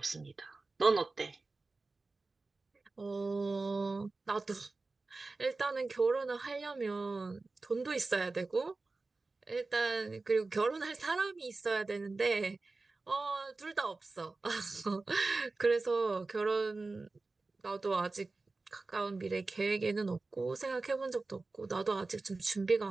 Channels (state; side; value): quieter; left; 3.5 dB